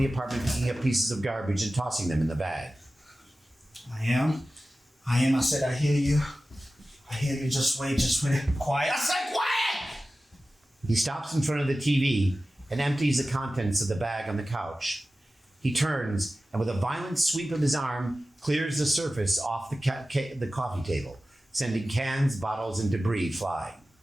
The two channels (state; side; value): normal; both; correlation 0.95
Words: apartment picking up pieces of garbage and tossing them in the bag. I am. I said, I hear you. I hear you. Just wait. Quiet. I said quiet! He stops in front of the TV and empties the contents of the bag on the couch. He turns and with a violent sweep of his arm, clears the surface off the coffee table, sending cans, bottles, and debris flying.